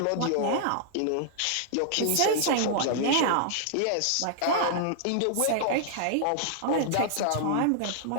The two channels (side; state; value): both; different; correlation -0.01